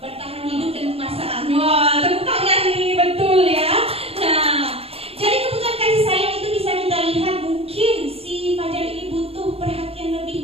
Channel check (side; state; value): left; late; 0.28 ms